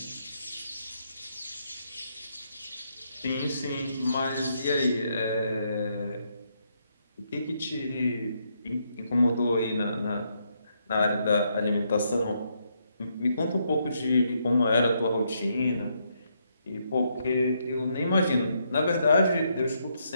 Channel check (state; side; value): inverted; both; correlation -0.76